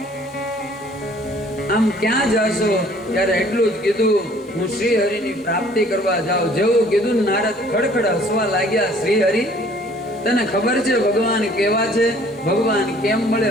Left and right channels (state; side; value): normal; both; correlation 0.56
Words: આમ ક્યાં જાશો? ત્યારે એટલું જ કીધું, હું શ્રી હરિની પ્રાપ્તિ કરવા જાઉં. જેવું કીધું નારદ ખડખડ હસવા લાગ્યા. શ્રી હરિ, તને ખબર છે ભગવાન કેવા છે? ભગવાન કેમ મળે